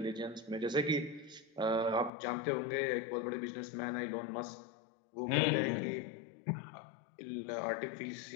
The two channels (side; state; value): right; drops out; at 2.1 s